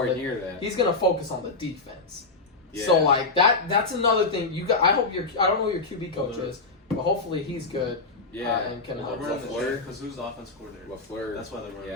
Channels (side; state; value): right; quieter; 3.6 dB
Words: near that. He's going to focus on the defense. Yeah. So like that's another thing. I hope I don't know who your QB coach is, but hopefully he's good. Yeah, and can Well, help. they're running the LaFleur. because who's the offense coordinator? LaFleur. That's why they're running.